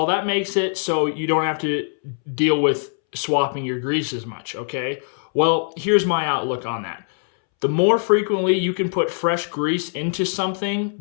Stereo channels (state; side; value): silent; right; 64 dB below the other